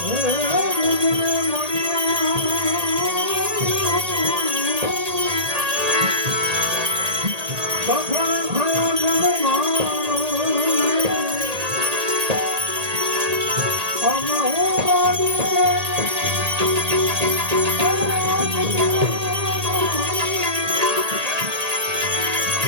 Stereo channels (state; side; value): late; left; 1.8 ms